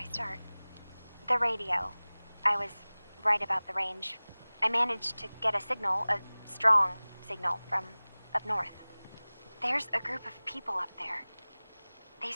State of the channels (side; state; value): both; inverted; correlation -0.99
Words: start? The radio. I was right about the range. I managed to get a signal, a strong signal, from up north. There's a group of people up there. They